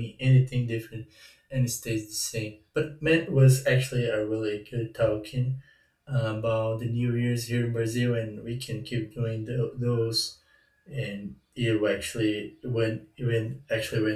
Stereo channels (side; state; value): both; identical; correlation 1.00